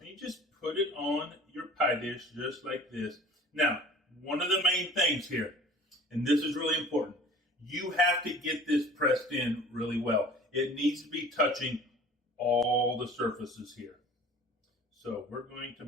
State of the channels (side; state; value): both; normal; correlation 0.45